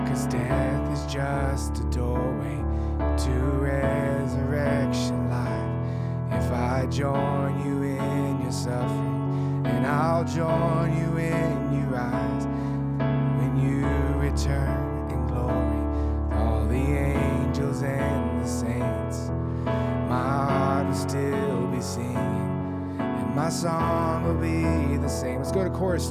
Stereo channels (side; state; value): both; identical; correlation 1.00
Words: 'Cause death is just a doorway to resurrection life. If I join you in your suffering, and I'll join you in your rise. When you return in glory, with all the angels and the saints, my heart will still be singing, and my song will be the same. Let's go to chorus